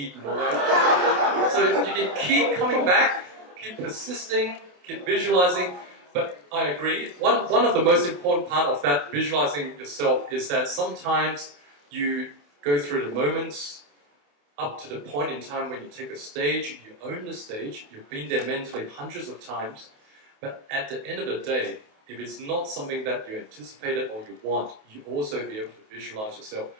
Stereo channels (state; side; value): late; left; 28 ms